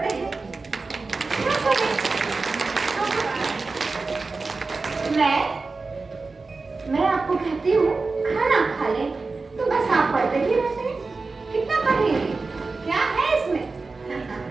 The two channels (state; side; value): quieter; left; 3.9 dB